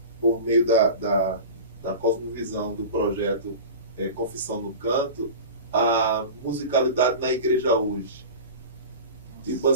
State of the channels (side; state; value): both; inverted; correlation -0.33